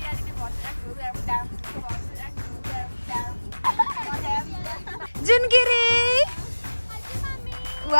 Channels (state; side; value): inverted; both; correlation -1.00